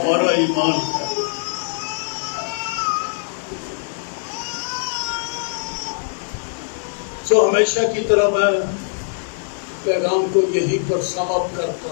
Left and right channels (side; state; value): right; silent; digital silence